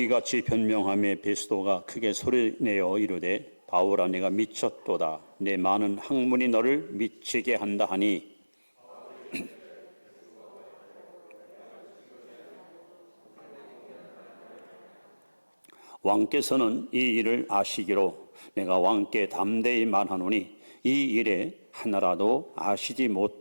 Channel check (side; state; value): both; inverted; correlation -1.00